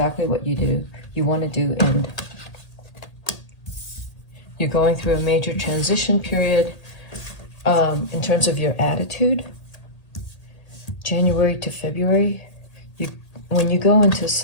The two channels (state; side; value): late; right; 1.8 ms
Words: what you want to do, and you're going through a major transition period in terms of your attitude. January to February, when you go into